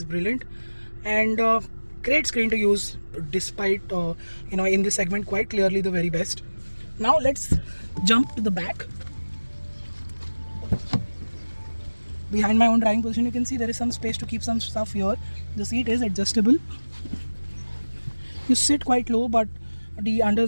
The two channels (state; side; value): inverted; both; correlation -1.00